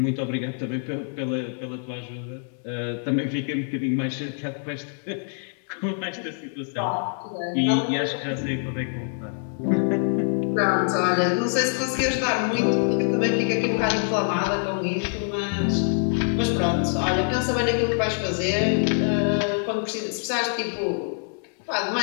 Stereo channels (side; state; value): right; silent; 62 dB below the other